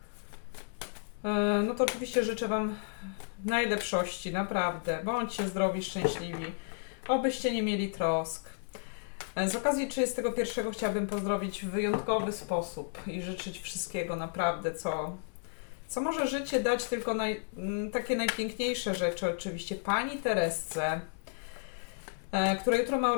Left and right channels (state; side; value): silent; right; 56 dB below the other